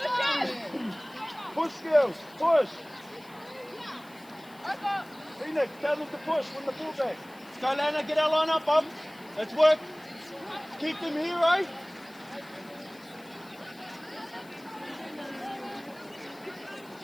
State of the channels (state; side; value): noise; left; hiss, 25 dB below the sound